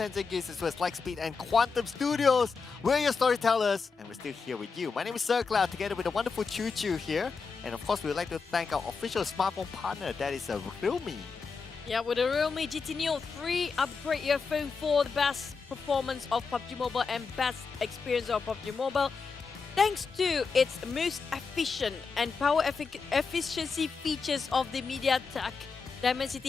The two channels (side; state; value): right; quieter; 5.0 dB